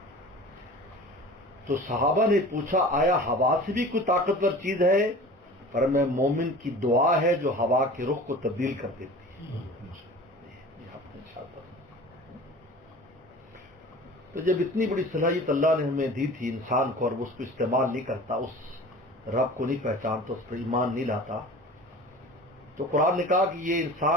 تو صحابہ نے پوچھا آیا ہوا سے بھی کوئی طاقتور چیز ہے؟ پر میں مومن کی دعا ہے جو ہوا کے رخ کو تبدیل کر دیتی ہے. تو جب اتنی بڑی صلاحیت اللہ نے ہمیں دی تھی انسان کو، اور وہ اس کو استعمال نہیں کرتا، اس رب کو نہیں پہچانتا، اس پر ایمان نہیں لاتا، تو قرآن نے کہا کہ یہ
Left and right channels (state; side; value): normal; both; correlation 0.40